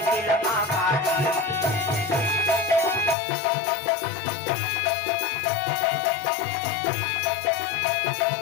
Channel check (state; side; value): drops out; right; at 3.2 s